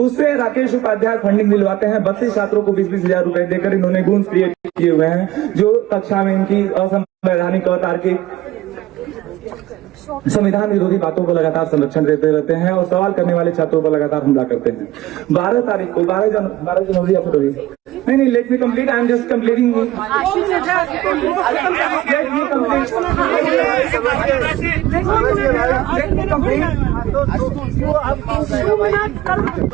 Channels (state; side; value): quieter; left; 15.7 dB